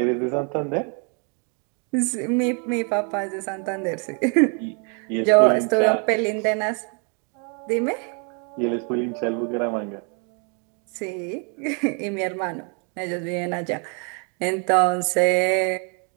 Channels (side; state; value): left; quieter; 37.8 dB